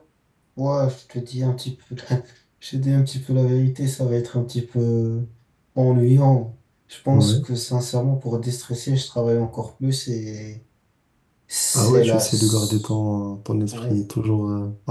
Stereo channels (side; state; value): both; identical; correlation 1.00